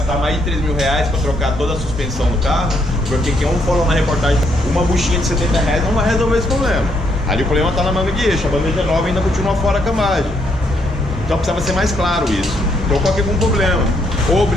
mais de R$3.000 para trocar toda a suspensão do carro, porque quem falou na reportagem, uma buchinha de R$70 não vai resolver esse problema. Ali o problema está na manga de eixo, a bandeja nova ainda continua fora a cambagem. Então precisava ser mais claro isso. Então qual que é o problema? Ou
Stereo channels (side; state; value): both; normal; correlation 0.73